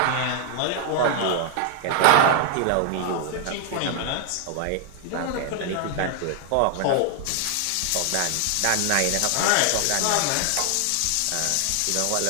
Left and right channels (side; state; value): both; different; correlation 0.00